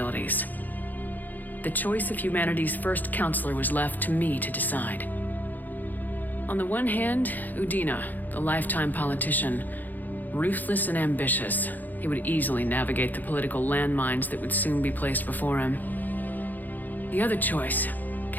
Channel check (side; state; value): right; late; 0.085 ms